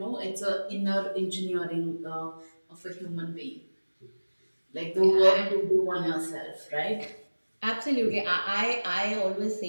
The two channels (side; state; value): both; inverted; correlation -1.00